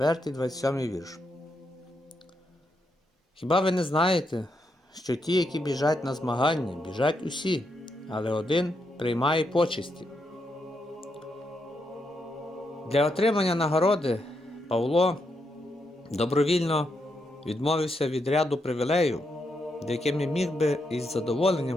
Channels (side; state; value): both; normal; correlation 0.81